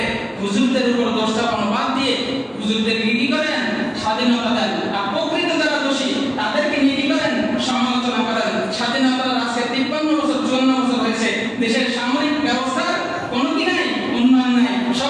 হুজুরদের উপর দোষ চাপানো বাদ দিয়ে হুজুরদেরকে কি করেন, স্বাধীনতা দেন। আর প্রকৃত যারা দোষী তাদেরকে নিয়ে কি করেন, সমালোচনা করেন। স্বাধীনতার আজকে 53 বছর 54 বছর হয়েছে, দেশের সামরিক ব্যবস্থার কোনো কি নাই, উন্নয়ন নাই,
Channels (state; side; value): identical; both; correlation 1.00